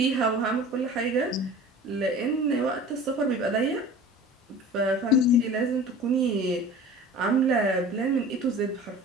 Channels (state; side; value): normal; both; correlation 0.40